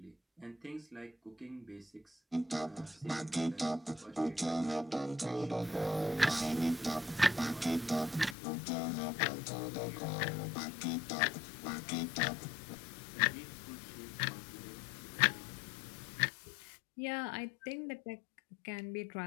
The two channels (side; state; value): right; drops out; at 8.3 s